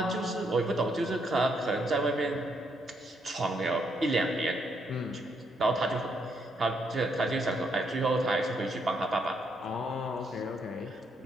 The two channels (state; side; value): normal; both; correlation 0.75